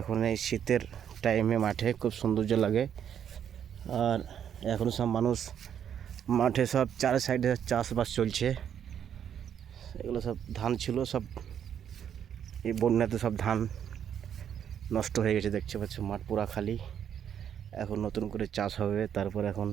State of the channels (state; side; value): quieter; left; 8.9 dB